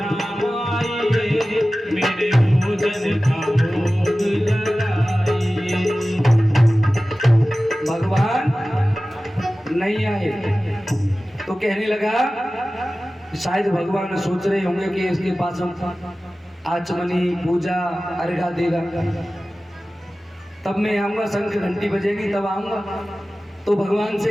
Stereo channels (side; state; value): both; normal; correlation 0.96